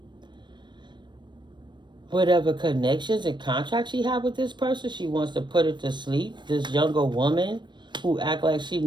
connections and contracts she had with this person. She wants to put it to sleep. This younger woman who act like she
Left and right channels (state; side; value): late; left; 0.22 ms